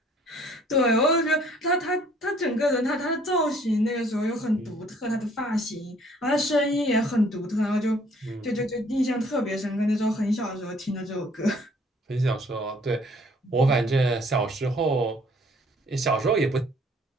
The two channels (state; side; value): normal; both; correlation 0.59